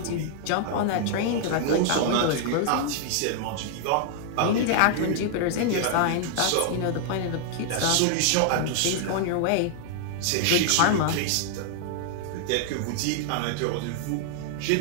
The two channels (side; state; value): both; different; correlation 0.00